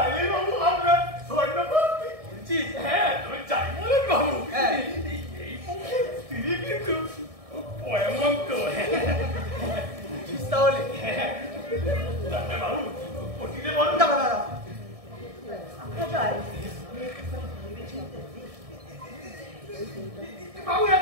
বাবু আমরা স্বর্ণপতি বলছি হ্যাঁ তুমি চাই বলেন বাবু হ্যাঁ। এই পক্ষে তিনি কিন্তু এমন তো তাহলে ডাক্তার বাবু ওটিতে বলুন দাঁড়া দাঁড়া আমরা যাই বাবু এক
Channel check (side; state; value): left; late; 1.6 ms